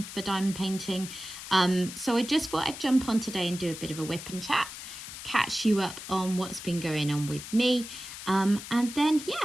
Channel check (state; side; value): noise; left; hiss, 11 dB below the sound